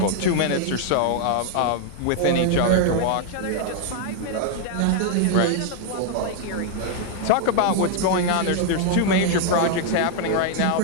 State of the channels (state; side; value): different; both; correlation 0.00